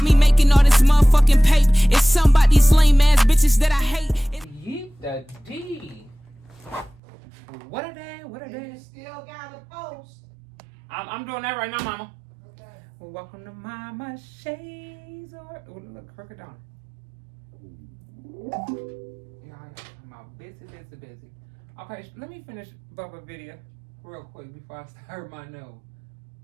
me making all this motherfucking paper. It's something about these lame ass bitches that I hate. Yeet the D. What are they? What are they? You still got a post. I'm doing that right now, mama. Okay. Welcome to Mama Shades or look, crooked down. Yeah, I'm out busy. Okay, let me finish Bubba video real quick before I start my nose.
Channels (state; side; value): drops out; left; at 7.0 s